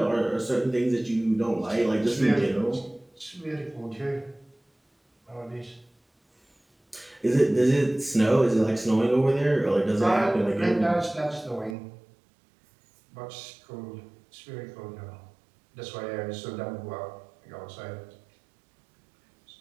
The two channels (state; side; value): drops out; left; at 11.8 s